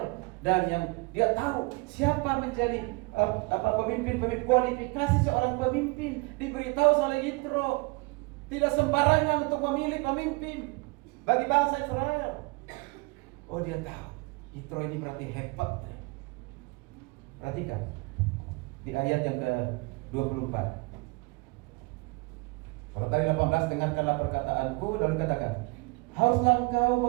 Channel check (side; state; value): left; quieter; 27.3 dB